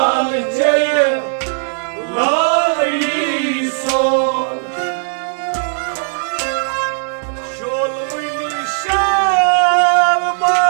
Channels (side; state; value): left; silent; 59 dB below the other